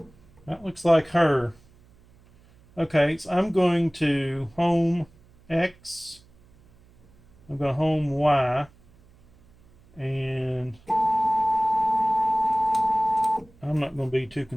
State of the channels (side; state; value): right; noise; hum, 29 dB below the sound